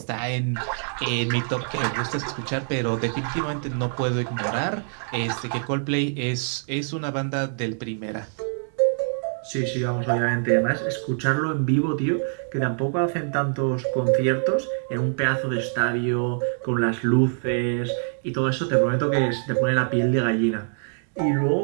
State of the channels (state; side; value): silent; left; digital silence